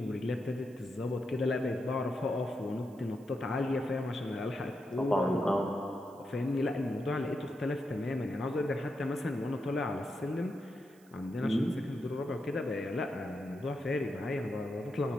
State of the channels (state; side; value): noise; right; hiss, 28 dB below the sound